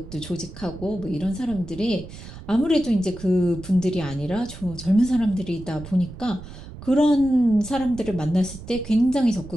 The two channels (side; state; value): right; noise; rumble, 14 dB below the sound